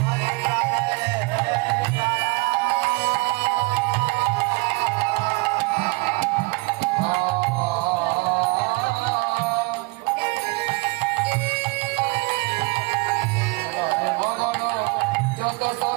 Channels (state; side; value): quieter; left; 26.3 dB